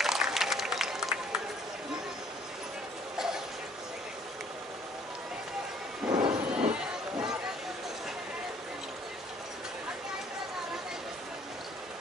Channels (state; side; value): normal; both; correlation 0.59